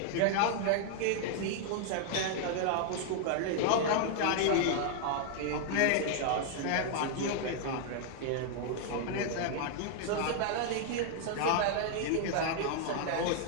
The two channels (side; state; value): both; different; correlation 0.00